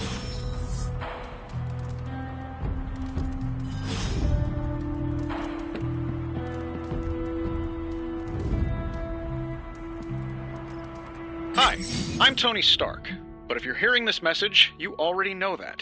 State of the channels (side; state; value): both; identical; correlation 1.00